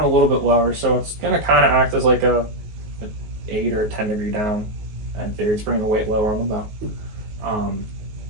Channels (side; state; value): left; late; 19 ms